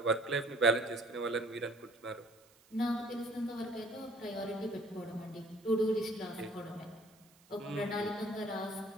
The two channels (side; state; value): right; noise; hiss, 28 dB below the sound